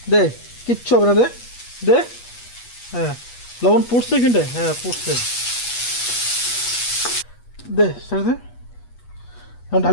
দে কিচ্ছু হবে না, দে দে। হ্যাঁ লবণ পড়ছে এখানটায়, হ্যাঁ পড়ছে, দে ছেড়ে দে, এখন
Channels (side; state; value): right; late; 8.3 ms